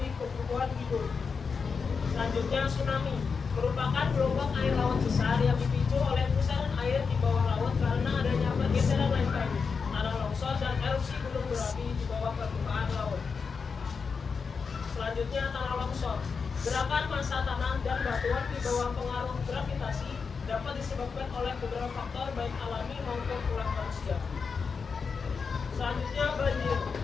kebutuhan hidup. Selanjutnya tsunami. Merupakan gelombang air laut besar yang dipicu oleh pusaran air di bawah laut karena adanya pergeseran lempeng, tanah longsor, dan erupsi gunung berapi di bawah permukaan laut. Selanjutnya tanah longsor. Gerakan massa tanah dan batuan di bawah pengaruh gravitasi dapat disebabkan oleh beberapa faktor baik alami maupun ulah manusia. Selanjutnya banjir.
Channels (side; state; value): right; quieter; 5.4 dB